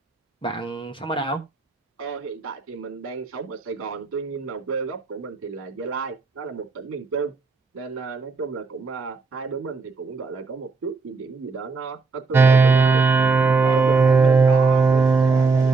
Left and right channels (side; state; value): left; quieter; 4.2 dB